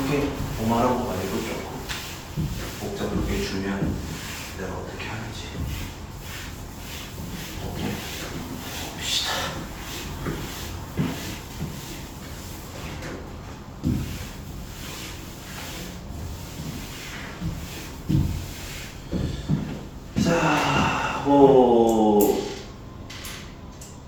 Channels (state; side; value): identical; both; correlation 1.00